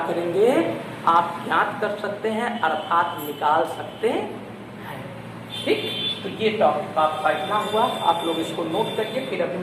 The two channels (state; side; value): identical; both; correlation 1.00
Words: करेंगे, आप ज्ञात कर सकते हैं अर्थात निकाल सकते हैं। ठीक, तो ये टॉपिक आपका इतना हुआ, आप लोग इसको नोट करिए। फिर अभी